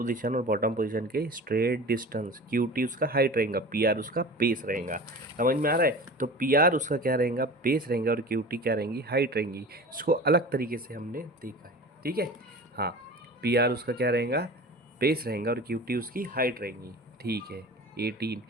और बॉटम पोजीशन के स्ट्रेट डिस्टेंस, क्यू टी उसका हाइट रहेगा, पी आर उसका बेस रहेगा। समझ में आ रहा है? तो पी आर उसका क्या रहेगा, बेस रहेगा, और क्यू टी क्या रहेंगी, हाइट रहेंगी। इसको अलग तरीके से हमने देखा है, ठीक है। हाँ, पी आर उसका क्या रहेगा, बेस रहेगा, और क्यू टी उसकी हाइट रहेंगी, ठीक है। 18,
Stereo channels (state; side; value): normal; both; correlation 0.36